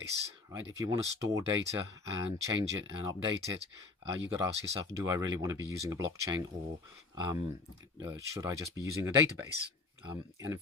right? If you want to store data and change it and update it, you've got to ask yourself, do I really want to be using a blockchain, or should I just be using a database? And in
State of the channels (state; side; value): quieter; right; 3.8 dB